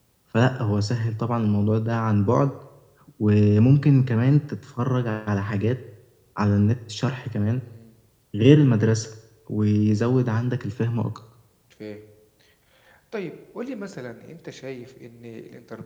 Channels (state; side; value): identical; both; correlation 1.00